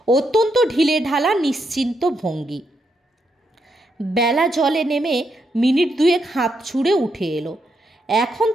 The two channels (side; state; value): both; normal; correlation 0.80